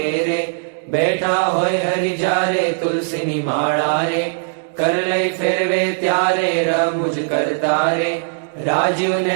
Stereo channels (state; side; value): silent; left; 67 dB below the other